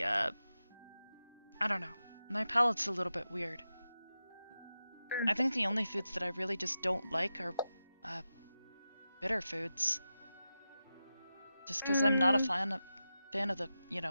I don't know. My palate's a little bit weird. I think the only foods that I really just don't like are bitter foods. Just because I'm not a fan of the, you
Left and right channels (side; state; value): both; inverted; correlation -0.92